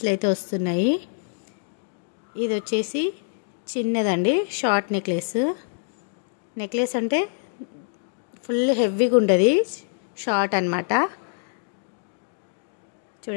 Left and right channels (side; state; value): right; silent; digital silence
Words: అయితే వస్తున్నాయి. ఇది వచ్చేసి చిన్నదండి, షార్ట్ నెక్లెస్ అంటే ఫుల్ హెవీగా ఉంటుంది, షార్ట్ అన్నమాట.